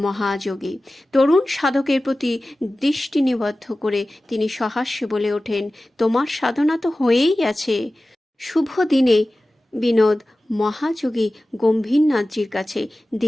মহাযোগী। তরুণ সাধকের প্রতি দৃষ্টি নিবদ্ধ করে তিনি সহাস্যে বলে ওঠেন, তোমার সাধনা তো হয়েই আছে। শুভ দিনে বিনোদ মহাযোগী গম্ভীরনাথজির কাছে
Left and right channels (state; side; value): normal; both; correlation 0.96